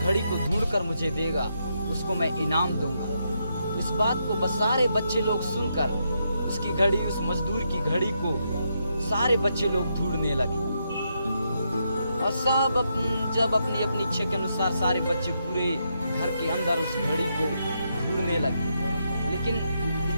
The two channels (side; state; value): both; inverted; correlation -0.80